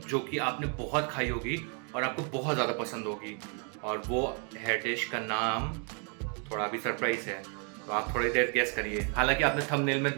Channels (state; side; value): quieter; left; 39.5 dB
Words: जो कि आपने बहुत खाई होगी और आपको बहुत ज़्यादा पसंद होगी। और वो है डिश का नाम थोड़ा अभी सरप्राइज है, तो आप थोड़ी देर गेस करिए। हालांकि आपने थंबनेल में